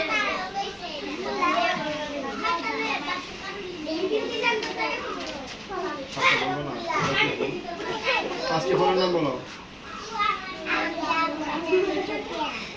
বলবো না, 5টি ফুলের নাম বলো।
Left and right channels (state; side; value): identical; both; correlation 1.00